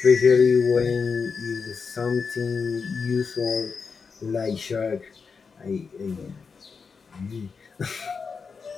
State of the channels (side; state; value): right; quieter; 5.3 dB